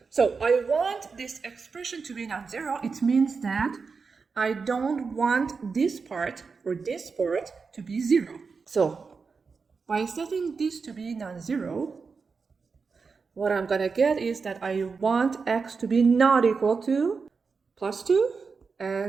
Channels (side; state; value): left; quieter; 5.0 dB